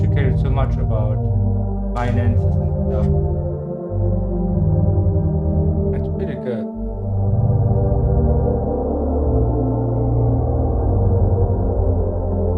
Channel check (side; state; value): both; identical; correlation 1.00